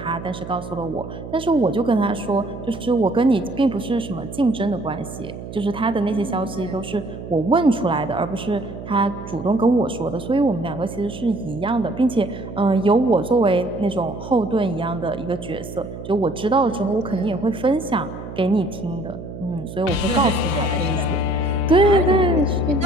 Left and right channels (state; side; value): noise; right; hum, 11 dB below the sound